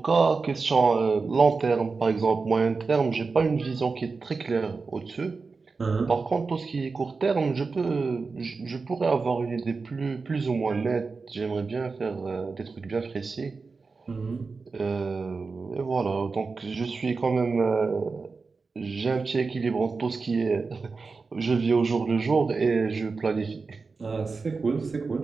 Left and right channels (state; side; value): quieter; left; 4.4 dB